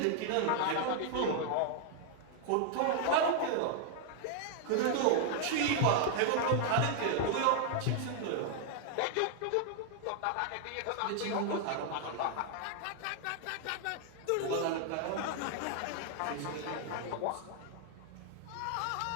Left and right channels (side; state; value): both; different; correlation 0.00